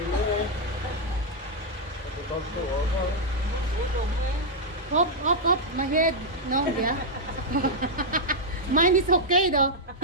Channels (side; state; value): both; normal; correlation -0.04